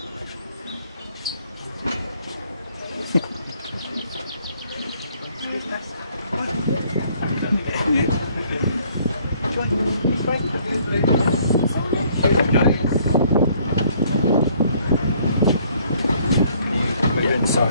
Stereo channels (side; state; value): both; inverted; correlation -0.63